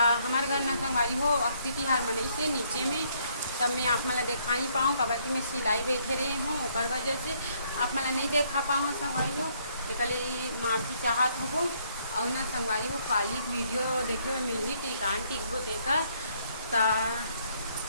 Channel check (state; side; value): inverted; both; correlation -0.68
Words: हमारे घर ना संगवारी हो अक्ति तिहार मनाई से नीचे में। तब मैं आप मला देखा नहीं पाऊँ काबर कि मैं सिलाई बैठे रही हूँ, ओकर वजह से आप मला नहीं देखा पाऊँ संगवारी हो। एक माफ़ी चाहत हो। और ना संगवारी हो काली वीडियो देखे हुए मिली टिकान टिकबो देकर ता